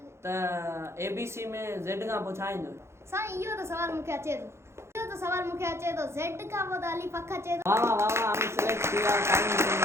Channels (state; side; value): late; left; 0.13 ms